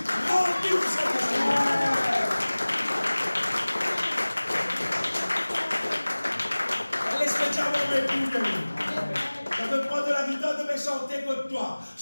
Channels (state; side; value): inverted; both; correlation -1.00